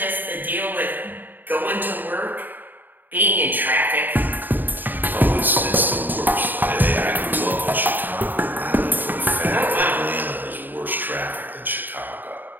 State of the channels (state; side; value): late; left; 0.090 ms